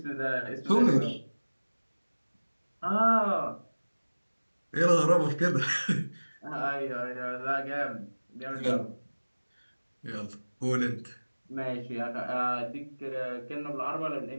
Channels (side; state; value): both; inverted; correlation -1.00